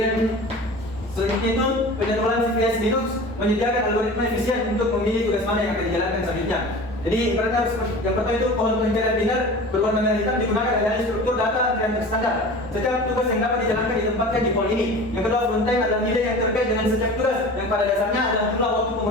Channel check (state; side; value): normal; both; correlation 0.37